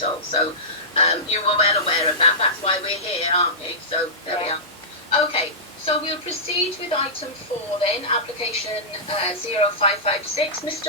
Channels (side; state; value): both; normal; correlation -0.16